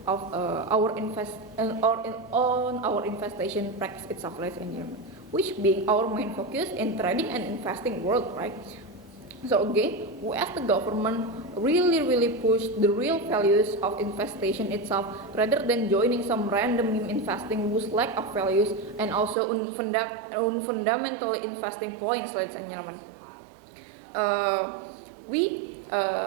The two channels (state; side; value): drops out; left; at 19.4 s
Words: of our investment practice itself, ladies and gentlemen, which being our main focus in trading and investing world, right? So again, we as the government really push the real values of investation itself rather than joining some random investing whose lack of values and also fundamental investing points, ladies and gentlemen.